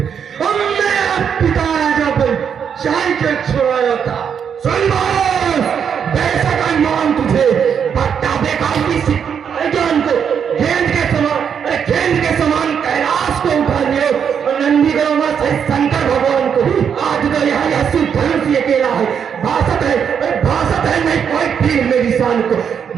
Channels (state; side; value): quieter; left; 7.5 dB